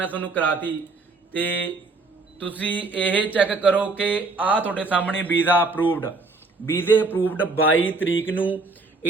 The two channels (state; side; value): quieter; left; 3.6 dB